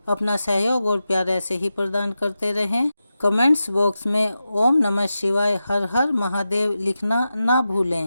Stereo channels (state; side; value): inverted; both; correlation -0.91